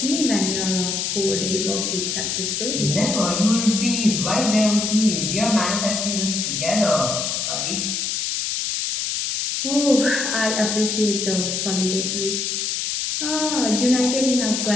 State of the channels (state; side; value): noise; left; hiss, 1 dB below the sound